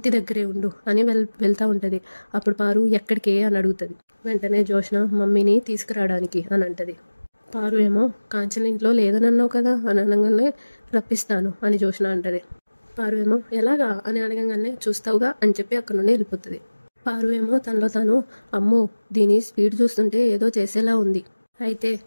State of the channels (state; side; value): inverted; both; correlation -1.00